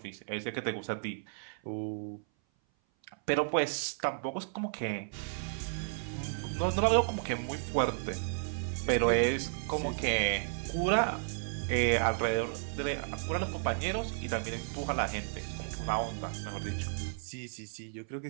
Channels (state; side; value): silent; left; 55 dB below the other